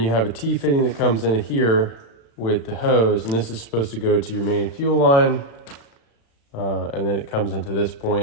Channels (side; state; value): right; late; 35 ms